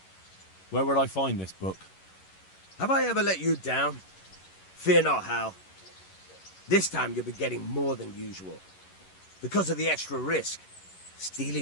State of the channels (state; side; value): late; right; 11 ms